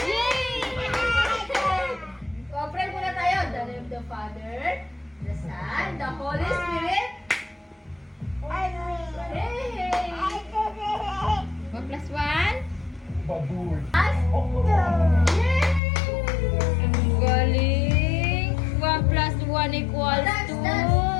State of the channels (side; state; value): right; drops out; at 15.8 s